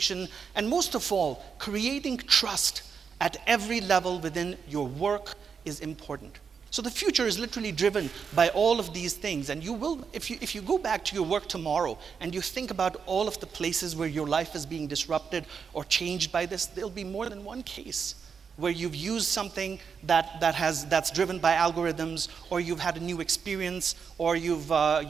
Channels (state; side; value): quieter; left; 6.2 dB